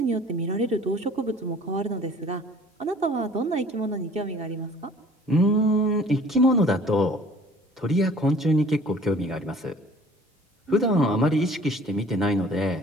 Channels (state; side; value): normal; both; correlation 0.51